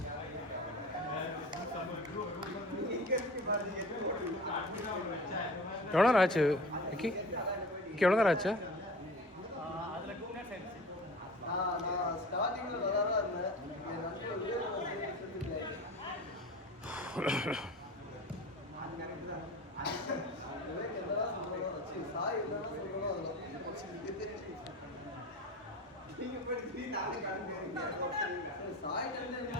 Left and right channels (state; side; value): normal; both; correlation 0.36